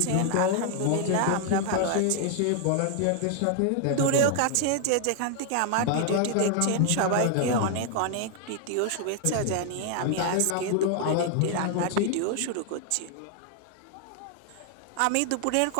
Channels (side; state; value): both; different; correlation 0.00